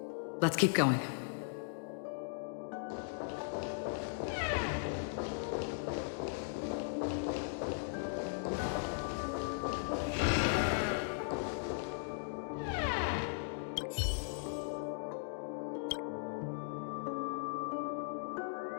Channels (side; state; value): right; silent; digital silence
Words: Let's keep going.